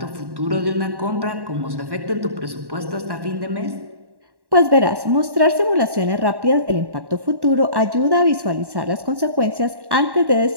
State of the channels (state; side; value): late; left; 1.1 ms